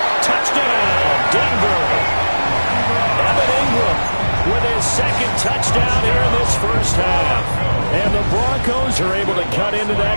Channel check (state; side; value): inverted; both; correlation -1.00